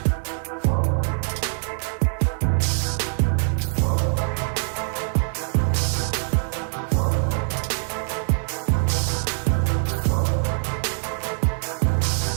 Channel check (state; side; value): silent; left; digital silence